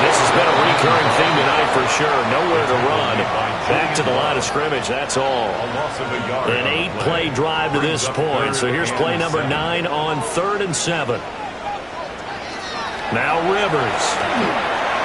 this has been a recurring theme tonight for sure. Nowhere to run. Back to the line of scrimmage, that's all. An 8-play drive to this point. So here's play number 9 on 3rd and 7. Now Rivers.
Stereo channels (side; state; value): both; identical; correlation 1.00